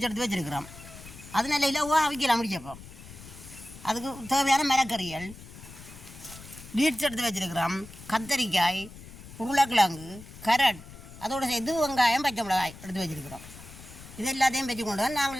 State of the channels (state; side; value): noise; left; rumble, 16 dB below the sound